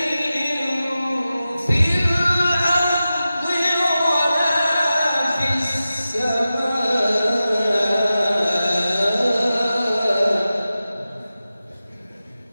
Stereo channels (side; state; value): both; inverted; correlation -0.94